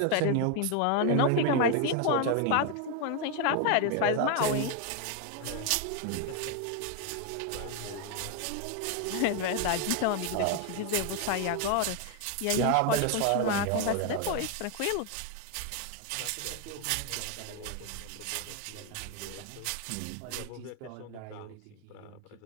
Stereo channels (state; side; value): different; both; correlation 0.01